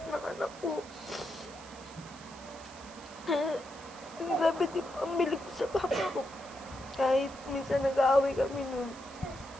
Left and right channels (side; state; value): right; noise; hiss, 19 dB below the sound